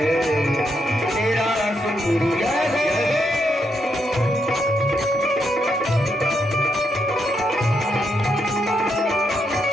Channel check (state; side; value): normal; both; correlation 0.80